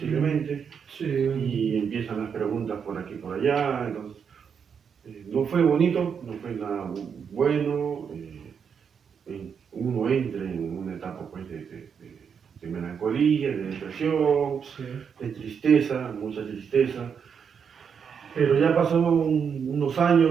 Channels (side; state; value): left; quieter; 6.9 dB